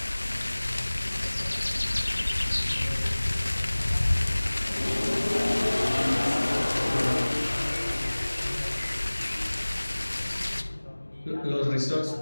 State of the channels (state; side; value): inverted; both; correlation -1.00